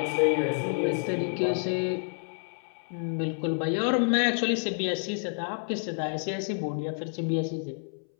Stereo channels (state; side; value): silent; right; 59 dB below the other